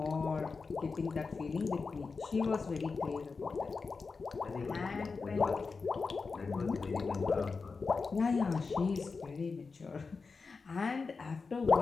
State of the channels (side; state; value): right; quieter; 4.6 dB